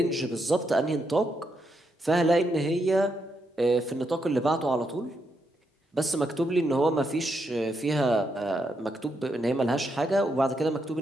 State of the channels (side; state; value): both; normal; correlation 0.80